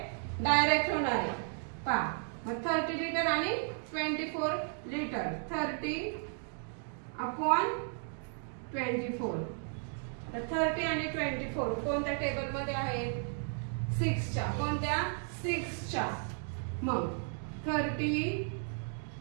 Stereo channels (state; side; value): silent; left; 55 dB below the other